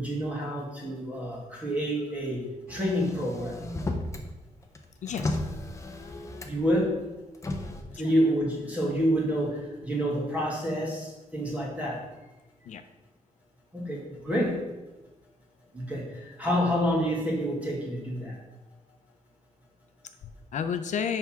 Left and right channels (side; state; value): both; normal; correlation 0.71